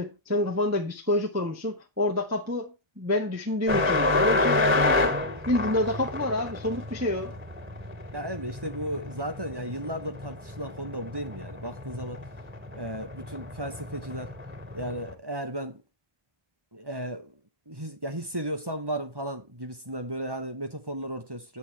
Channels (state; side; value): late; left; 1.1 ms